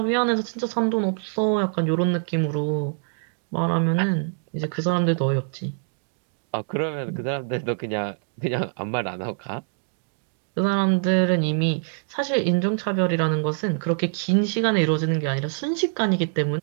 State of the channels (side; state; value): left; silent; digital silence